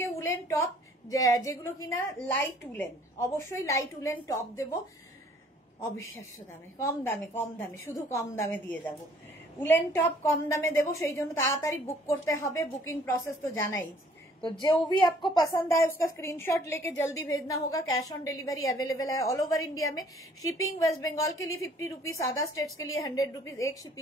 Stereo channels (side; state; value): both; normal; correlation 0.58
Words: উলেন টপ যেগুলো কিনা লাইট উলেন, অবশ্যই লাইট উলেন টপ দেবো অবিশ্বাস্য দামে, কম দামে, কম দামে, শুধু কম দামে দিয়ে যাব। उलेन टॉप कम दामे देवो, সেই জন্য তাড়াতাড়ি বুক করতে হবে। बुकिंग प्रोसेस तो जाना ही। तो जो भी आपको पसंद आए उसका स्क्रीनशॉट लेके जल्दी भेजना होगा। कैश ऑन डिलीवरी अवेलेबल है ऑल ओवर इंडिया में। शिपिंग वेस्ट बंगाल के लिए 50 रुपीज, अदर स्टेट्स के लिए 100 रुपीज। एक